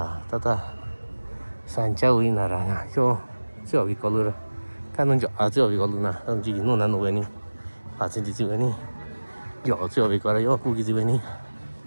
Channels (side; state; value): both; inverted; correlation -1.00